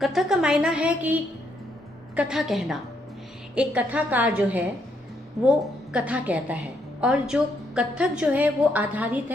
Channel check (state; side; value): normal; both; correlation 0.75